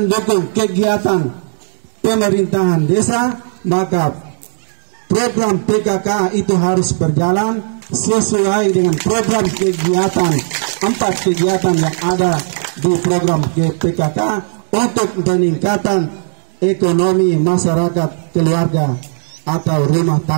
kegiatan pemerintahan desa, maka program PKK itu harus berjalan sesuai dengan program kegiatan 4 kegiatan yang ada di program GPKK untuk peningkatan ekonomi masyarakat keluarga atau rumah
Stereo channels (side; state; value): left; silent; digital silence